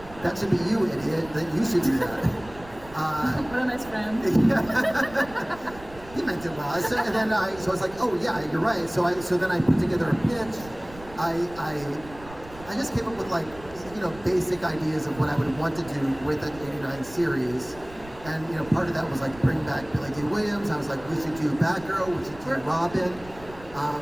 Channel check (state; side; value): noise; right; rumble, 19 dB below the sound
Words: that should be you, idiot, that you should do that. What a nice friend. He meant it well. So I was like, oh yeah, you're right. So then I put together a pitch. I just came up with like, basic ideas of what I would want to do with an 89 series. And part of that was like bring back Billy D. Williams. I was like, we should do Batgirl, we should do Robin.